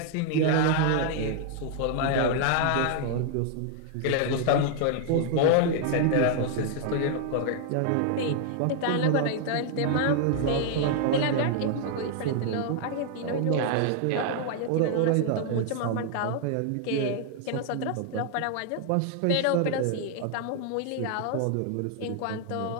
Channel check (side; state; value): both; different; correlation 0.00